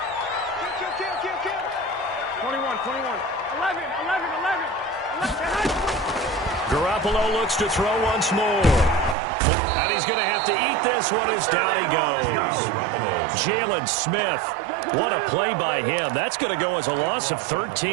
Kill. 21. 11. Garoppolo looks to throw once more. And he's going to have to eat this one as down he goes. Jalen Smith. What a play by him. That's going to go as a loss of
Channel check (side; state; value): left; drops out; at 9.2 s